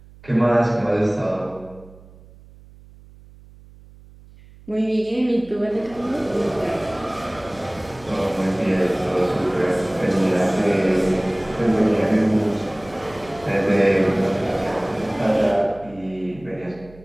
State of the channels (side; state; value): right; noise; hum, 23 dB below the sound